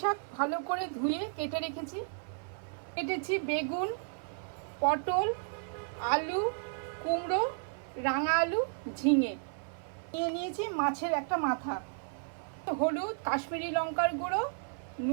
ভালো করে ধুয়ে কেটে রেখেছি। কেটেছি বেগুন, পটল, আলু, কুমড়ো, রাঙা আলু, ঝিঙে। নিয়ে নিয়েছি মাছের একটা মাথা, হলুদ, কাশ্মীরি লঙ্কার গুঁড়ো,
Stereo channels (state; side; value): silent; left; 56 dB below the other